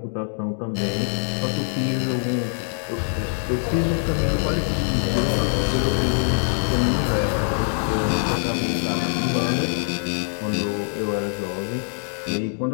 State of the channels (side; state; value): right; silent; 59 dB below the other